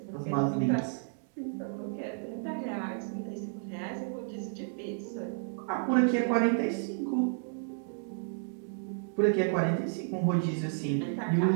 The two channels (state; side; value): silent; left; digital silence